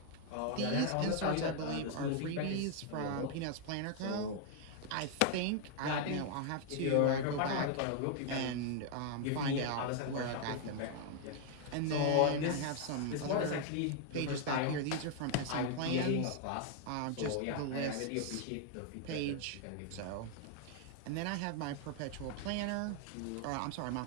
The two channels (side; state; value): both; different; correlation 0.00